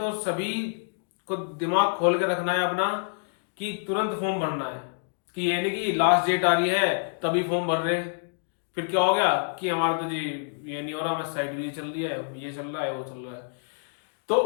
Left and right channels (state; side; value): silent; right; digital silence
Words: सभी को दिमाग खोल के रखना है अपना कि तुरंत फॉर्म भरना है, कि ये नहीं कि लास्ट डेट आ रही है तभी फॉर्म भर रहे, फिर क्या हो गया कि हमारा तो जी ये नहीं हो रहा, हमारी साइड भी चल रही है, ये चल रहा है, वो चल रहा है।